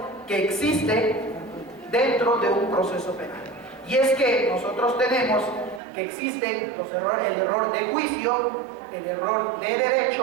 que existen dentro de un proceso penal. Y es que nosotros tenemos que existen los errores, el error de juicio, el error de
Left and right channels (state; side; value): drops out; left; at 5.8 s